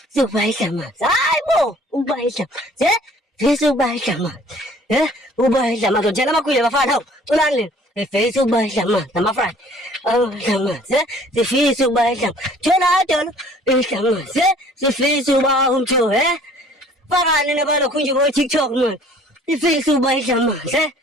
Ukuba idla amanzi. Hayi bo, ukuba idla amanzi. Sifisa ukuba idla amanzi. Ukuba idla amanzi. Njalo amakhwile bafana hawu, culani lena. Sifisa ukuba idla amanzi namafrani. Idla amanzi. Sifisa ukuba idla amanzi. Thola dolo, idla amanzi. Sifisa ukuba umthobi, fakani nabalokhu nje bo-TikTok manje. Sifisa ukuba idla amanzi.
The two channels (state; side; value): normal; both; correlation 0.54